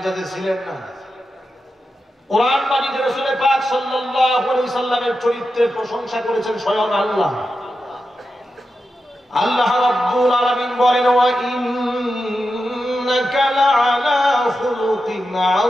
ছিলেন না। কোরআন মাজিদে রাসূল পাক সাল্লাল্লাহু আলাইহি সাল্লামের চরিত্রের প্রশংসা করেছেন স্বয়ং আল্লাহ। আল্লাহ রাব্বুল আলামিন বলেন, ওয়া ইন্নাকা লাআলা খুলুকিন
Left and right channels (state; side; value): normal; both; correlation 0.89